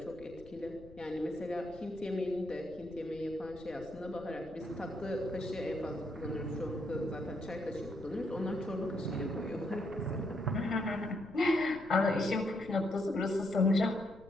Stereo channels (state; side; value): noise; left; rumble, 20 dB below the sound